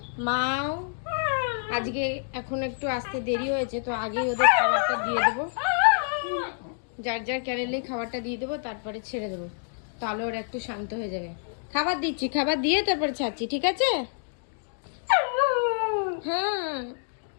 মাও আজকে এখন একটু আসতে দেরি হয়েছে, তো আগেই ওদের খাবারটা দিয়ে দেবো। যার যার ক্যারেলেই খাবারটা দিয়ে দেবো, তারপরে ছেড়ে দেবো, তাহলে ওরা একটু শান্ত হয়ে যাবে। খাবার দিচ্ছি, খাবার দিয়ে তারপরে ছাড়ছি, ঠিক আছে? হ্যাঁ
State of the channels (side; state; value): right; silent; digital silence